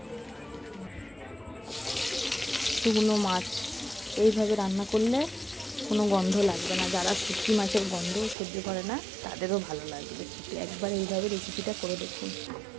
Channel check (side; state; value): left; drops out; at 8.3 s